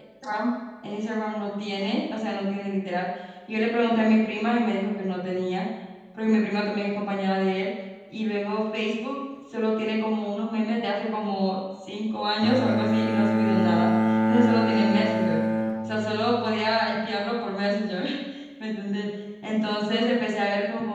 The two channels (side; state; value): both; identical; correlation 1.00